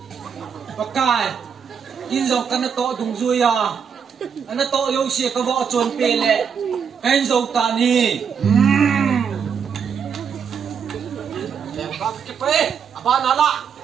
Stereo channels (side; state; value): left; quieter; 7.0 dB